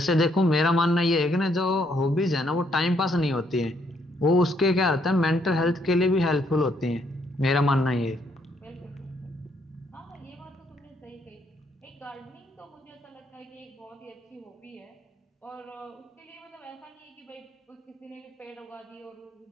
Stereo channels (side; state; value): both; normal; correlation 0.71